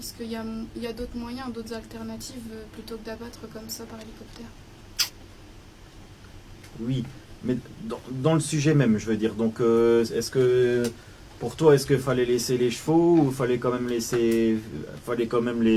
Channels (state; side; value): identical; both; correlation 1.00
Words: qu'il y a d'autres moyens, d'autres alternatives plutôt que d'abattre comme ça par hélicoptère. Oui, mais dans le sujet même, je veux dire. Donc, est-ce que pour toi, est-ce qu'il fallait laisser les chevaux ou fallait quand même les